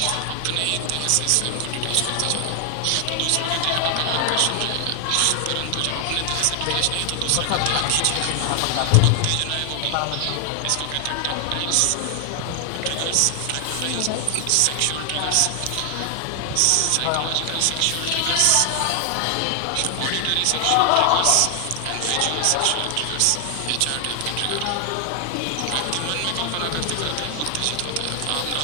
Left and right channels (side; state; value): both; different; correlation 0.00